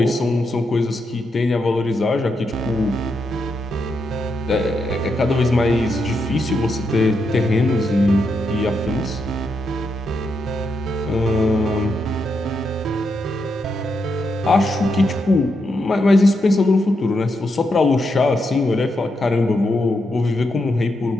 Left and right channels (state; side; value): normal; both; correlation 0.82